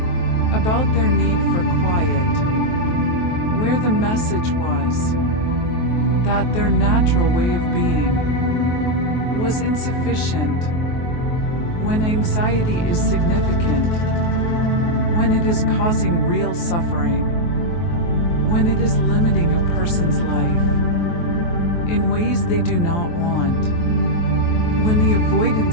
about their need for quiet, where the message was that their natural way of being was insufficient. When anxiety is significant, when it is causing real suffering, when it is limiting a person's life in ways they do not want, when the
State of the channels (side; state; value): right; late; 23 ms